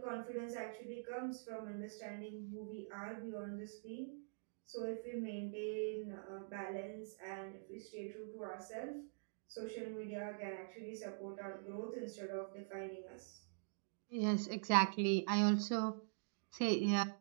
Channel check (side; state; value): left; silent; digital silence